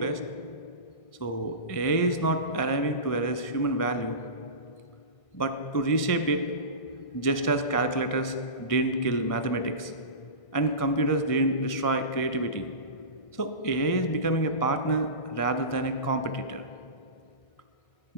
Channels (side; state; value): right; late; 1.6 ms